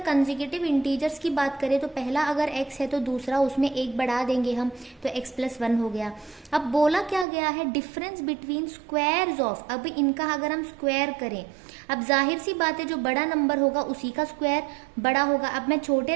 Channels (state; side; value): drops out; left; at 7.2 s